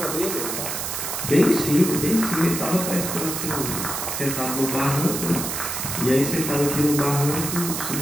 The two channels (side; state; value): right; noise; hiss, 3 dB below the sound